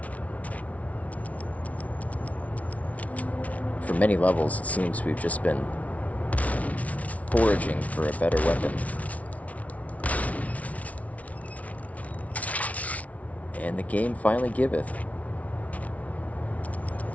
For many levels, it seems we've just been foraging for a better weapon. And the game finally giveth.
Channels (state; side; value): late; right; 0.068 ms